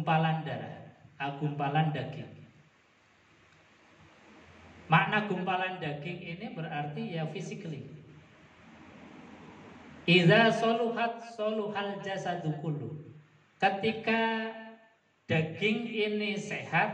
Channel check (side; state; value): both; identical; correlation 1.00